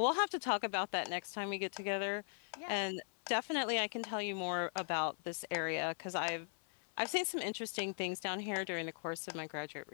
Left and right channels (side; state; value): right; silent; 52 dB below the other